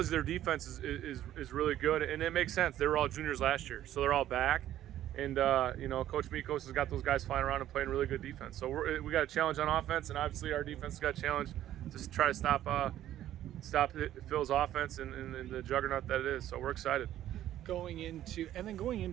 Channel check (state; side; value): quieter; left; 12.5 dB